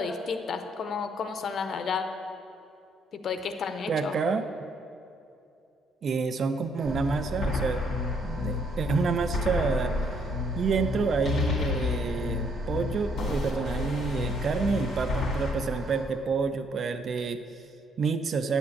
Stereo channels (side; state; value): both; normal; correlation 0.69